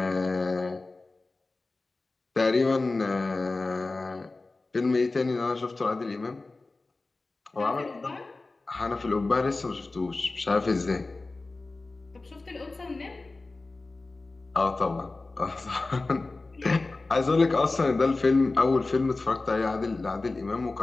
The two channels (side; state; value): right; quieter; 3.4 dB